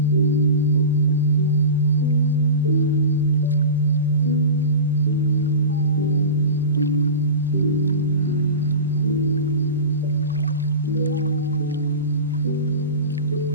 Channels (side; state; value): both; inverted; correlation -0.31